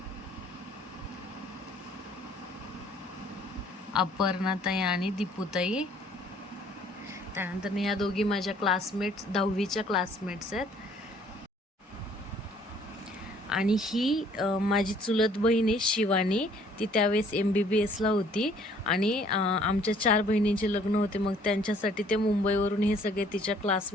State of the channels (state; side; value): normal; both; correlation 0.59